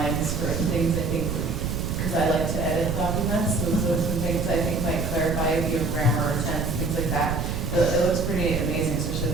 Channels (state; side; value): noise; right; rumble, 2 dB below the sound